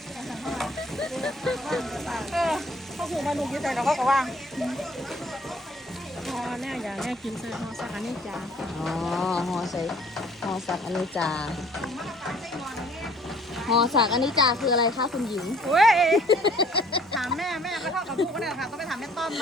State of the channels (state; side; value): normal; both; correlation 0.57